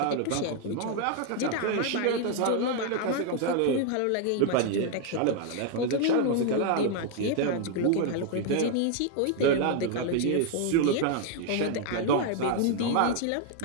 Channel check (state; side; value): different; both; correlation 0.00